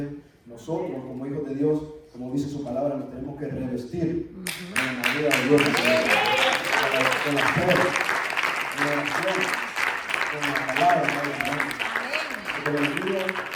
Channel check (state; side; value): identical; both; correlation 1.00